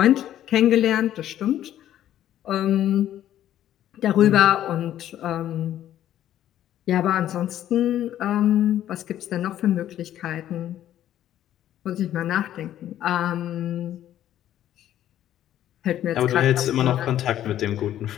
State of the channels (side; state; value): right; quieter; 11.9 dB